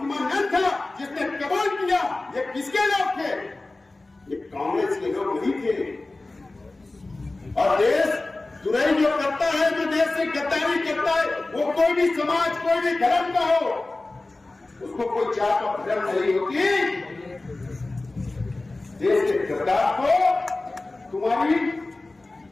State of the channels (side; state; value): right; quieter; 3.1 dB